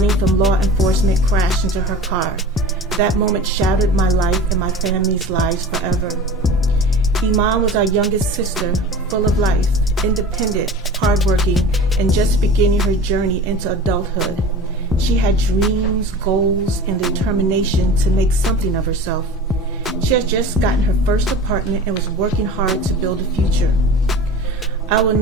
from law enforcement crashed into her car. That moment shattered my life and my family's lives forever. Iman was our youngest sister, full of life, independent, hardworking, and just beginning her journey into adulthood. She had dreams, goals, and the determination to make something of herself. She had just gotten her first apartment and was working hard to build a future. I will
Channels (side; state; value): both; normal; correlation 0.37